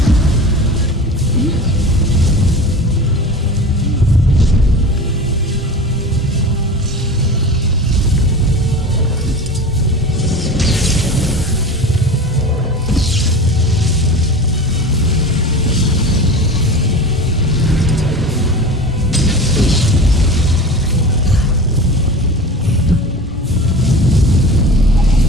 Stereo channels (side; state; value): both; normal; correlation 0.34